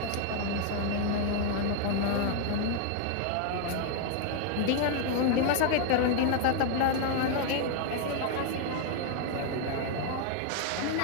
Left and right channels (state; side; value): different; both; correlation 0.00